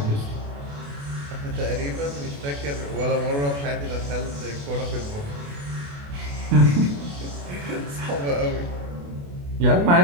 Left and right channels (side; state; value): left; late; 28 ms